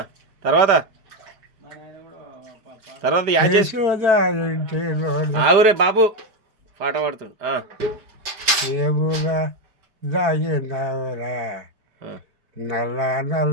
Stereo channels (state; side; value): late; left; 5.0 ms